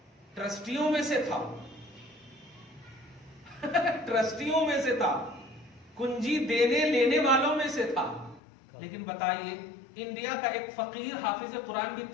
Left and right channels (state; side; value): drops out; right; at 8.4 s